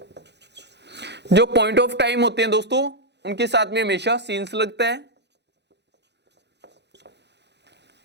जो पॉइंट ऑफ टाइम होते हैं दोस्तों उनके साथ में हमेशा सिंस लगता है,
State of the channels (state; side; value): late; left; 0.50 ms